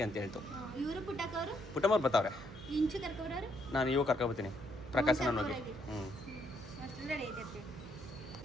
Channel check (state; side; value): noise; right; hum, 15 dB below the sound